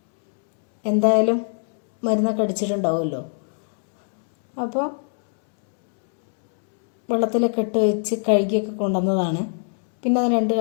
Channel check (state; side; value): silent; right; 64 dB below the other